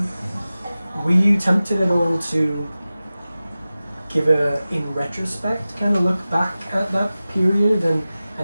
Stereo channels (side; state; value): both; inverted; correlation -0.96